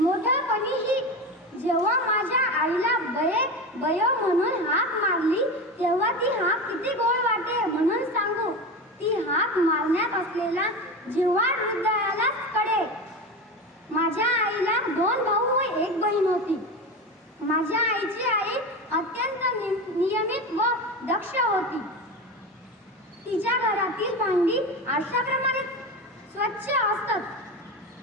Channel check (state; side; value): normal; both; correlation 0.24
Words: जेव्हा माझ्या आईला बयो म्हणून हाक मारली, तेव्हा ती हाक किती गोड वाटे म्हणून सांगू. ती हाक मारण्यात असलेला जिव्हाळ हृदयालाच कळे. माझ्या आईला 2 भाऊ व 1 बहीण होती. माझ्या आईची आई अत्यंत नियमित व दक्ष होती. तिच्या घरातील भांडी आरशाप्रमाणे स्वच्छ असत.